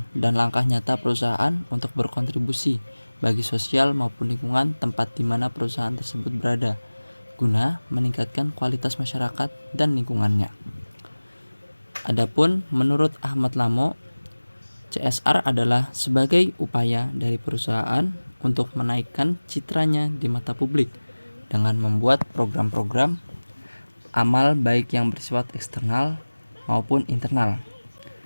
dan langkah nyata perusahaan untuk berkontribusi bagi sosial maupun lingkungan tempat di mana perusahaan tersebut berada, guna meningkatkan kualitas masyarakat dan lingkungannya. Adapun menurut Ahmad Lamo, CSR adalah sebagai upaya dari perusahaan untuk menaikkan citranya di mata publik dengan membuat program-program amal baik yang bersifat eksternal maupun internal.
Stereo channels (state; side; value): inverted; both; correlation -1.00